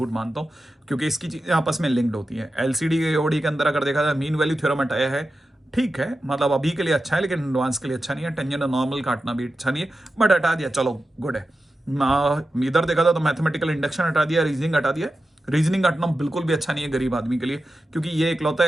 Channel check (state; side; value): normal; both; correlation 0.91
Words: मानता हूँ, क्योंकि इसकी चीजें आपस में लिंक्ड होती है। एलसीडी के ओडी के अंदर अगर देखा जाए मीन वैल्यू थ्योरम हटाया है, ठीक है, मतलब अभी के लिए अच्छा है, लेकिन एडवांस के लिए अच्छा नहीं है। टेंजेंट नॉर्मल काटना भी अच्छा नहीं है, बट हटा दिया, चलो गुड है। इधर देखा था तो मैथमेटिकल इंडक्शन हटा दिया, रीजनिंग हटा दिया। रीजनिंग हटना बिल्कुल भी अच्छा नहीं है गरीब आदमी के लिए, क्योंकि ये इकलौता